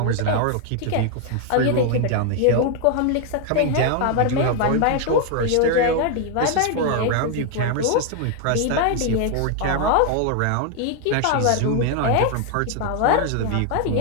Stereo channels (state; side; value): different; both; correlation 0.01